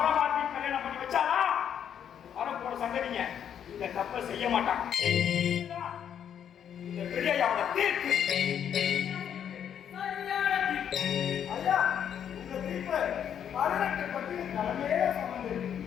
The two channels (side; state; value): right; quieter; 8.9 dB